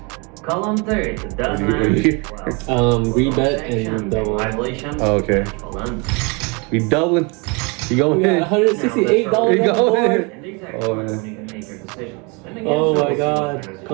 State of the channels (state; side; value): quieter; left; 30.8 dB